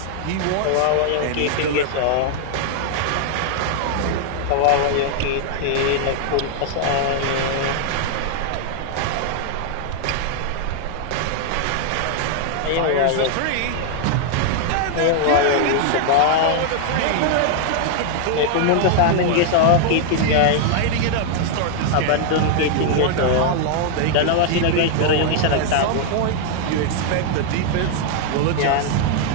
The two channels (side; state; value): both; different; correlation 0.00